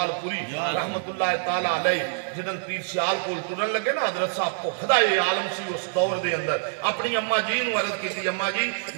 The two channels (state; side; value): silent; left; digital silence